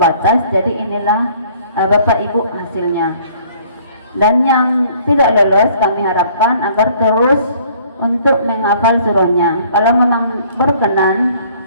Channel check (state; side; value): inverted; both; correlation -0.57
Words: jadi inilah Bapak Ibu hasilnya. Dan yang tidak lolos kami harapkan agar terus untuk menghafal surahnya. Kalau memang berkenan,